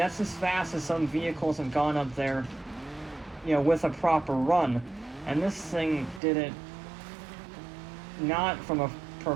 as fast as some vehicles have gone up there, you know, with a proper run. And this thing did it not from a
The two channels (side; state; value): left; drops out; at 6.2 s